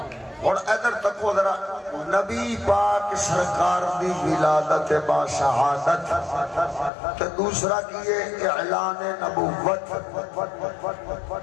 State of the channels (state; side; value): drops out; right; at 6.9 s